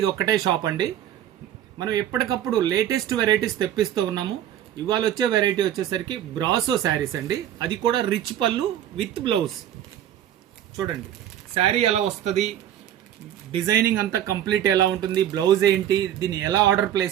ఒక్కటే షాప్ అండి. మనం ఎప్పటికప్పుడు లేటెస్ట్ వెరైటీస్ తెప్పిస్తూ ఉన్నాము. ఇవాళ వచ్చే వెరైటీ వచ్చేసరికి బ్రాసో శారీస్ అండి. అది కూడా రిచ్ పళ్ళు విత్ బ్లౌజ్. చూడండి శారీ ఎలా వస్తుంది, డిజైనింగ్ అంతా కంప్లీట్ ఎలా ఉంటుంది, బ్లౌజ్ ఏంటి, దీన్ని ఎలా ఆర్డర్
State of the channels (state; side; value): quieter; left; 11.1 dB